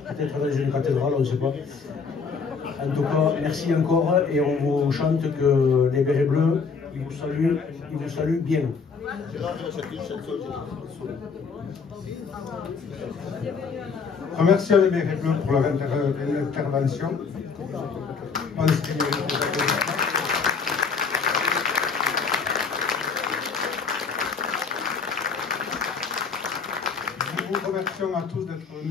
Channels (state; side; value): quieter; right; 5.3 dB